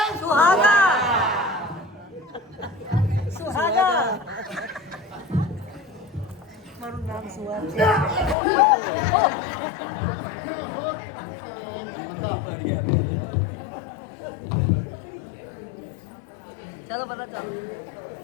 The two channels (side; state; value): right; drops out; at 8.3 s